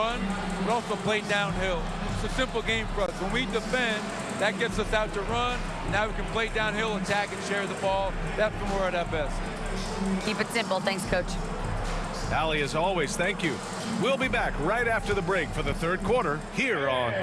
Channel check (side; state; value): both; identical; correlation 1.00